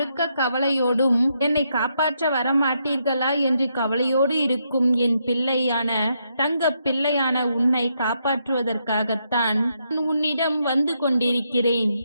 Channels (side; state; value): both; inverted; correlation -0.79